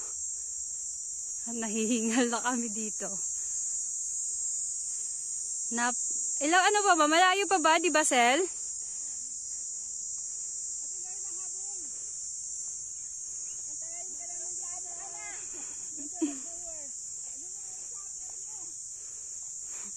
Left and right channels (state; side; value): identical; both; correlation 1.00